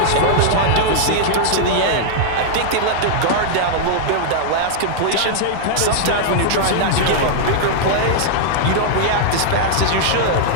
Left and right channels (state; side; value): different; both; correlation -0.01